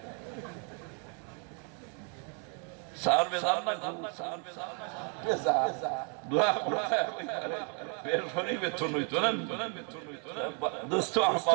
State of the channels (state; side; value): quieter; left; 38.9 dB